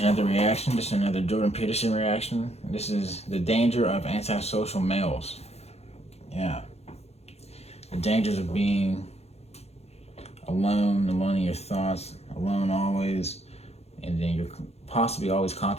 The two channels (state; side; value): late; right; 0.30 ms